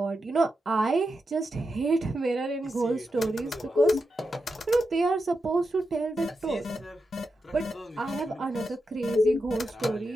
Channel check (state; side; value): normal; both; correlation 0.88